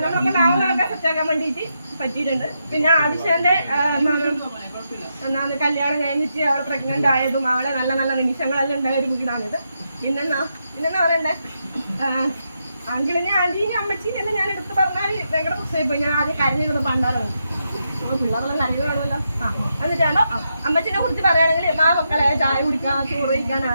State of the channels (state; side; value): inverted; both; correlation -0.83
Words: നമ്മളൊക്കെ നാളെ സെറ്റാക്കാൻ വേണ്ടിയിട്ട് പറ്റിയിട്ടുണ്ട്. പിന്നെ ആദിശന്റെ കല്യാണം കഴിഞ്ഞിട്ട് അവളെ പ്രഗ്നന്റ് ആയതും അവളെ നല്ല നല്ല നിമിഷങ്ങളെല്ലാം ഉണ്ടായ ഒരു വീടാണിത്. പിന്നെന്താ പറയണ്ടേ, അങ്കിളിനെ ആന്റീനെ അമ്മച്ചീനെ ഞാൻ എടുത്ത് പറഞ്ഞാൽ ഭയങ്കര പ്രശ്നമായി പോയി. ഞാൻ ആദ്യം കരഞ്ഞിരുന്നു പണ്ടാലോ പിള്ളേരെല്ലാം കരയുകയാണല്ലോ. എന്നിട്ടാണോ അമ്മച്ചിനെ കുറിച്ച് പറയുകയാണെങ്കിൽ മക്കളെ ചായ കുടിക്കാൻ ചോറ്